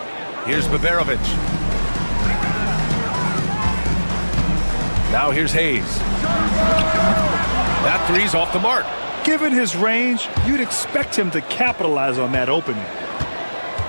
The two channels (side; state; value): both; inverted; correlation -1.00